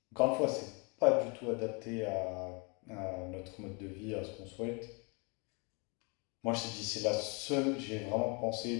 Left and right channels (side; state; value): right; quieter; 32.3 dB